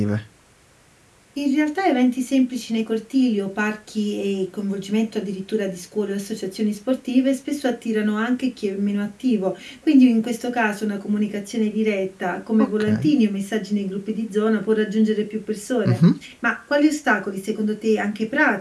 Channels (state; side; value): identical; both; correlation 1.00